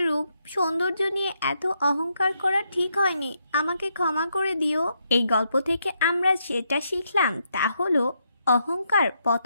রূপ সৌন্দর্য নিয়ে এত অহংকার করা ঠিক হয়নি, আমাকে ক্ষমা করে দিও। এই গল্প থেকে আমরা যেটা শিখলাম তা হলো, অহংকার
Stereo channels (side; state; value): both; inverted; correlation -0.79